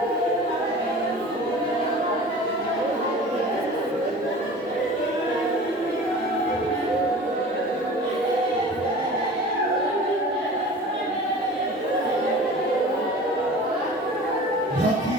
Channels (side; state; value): both; normal; correlation 0.40